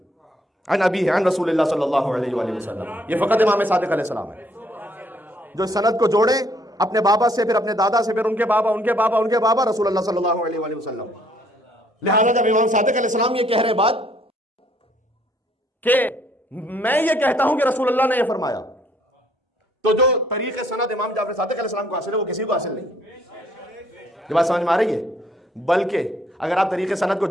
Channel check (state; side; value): normal; both; correlation 0.65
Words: अन अबी है, अन रसूलुल्लाह सल्लल्लाहु अलैहि वसल्लम। ये फ़कत इमाम सादिक अलैहिस्सलाम है जो सनद को जोड़े अपने बाबा से, फिर अपने दादा से, फिर उनके बाबा, उनके बाबा, उनके बाबा, रसूलुल्लाह सल्लल्लाहु अलैहि वसल्लम। लिहाजा जब इमाम सादिक अलैहिस्सलाम ये कह रहे बात कि मैं ये कहता हूं कि रसूलुल्लाह ने ये फरमाया, तो जो तरीके सनद इमाम जाफर सादिक अलैहिस्सलाम को हासिल है वो किसी को हासिल नहीं। ये बात समझ में आ रही है? बल्कि अगर आप तरीके सनद को